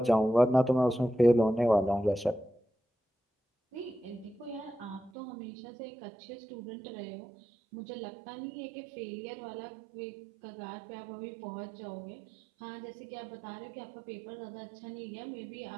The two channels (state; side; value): drops out; left; at 5.1 s